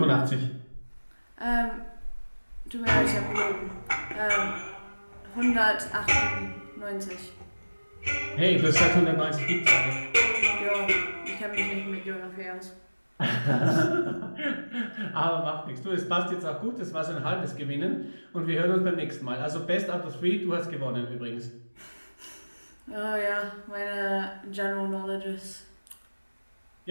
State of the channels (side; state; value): both; inverted; correlation -1.00